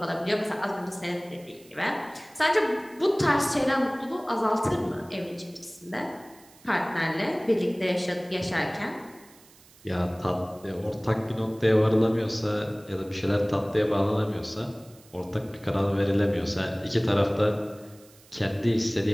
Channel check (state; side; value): noise; right; hiss, 26 dB below the sound